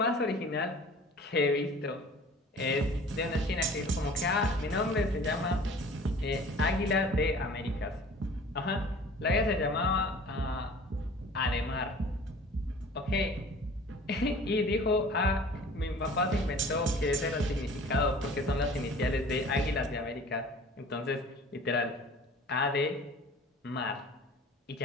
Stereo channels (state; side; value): normal; both; correlation 0.46